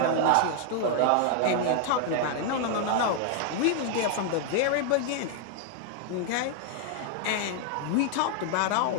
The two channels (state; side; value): different; both; correlation 0.00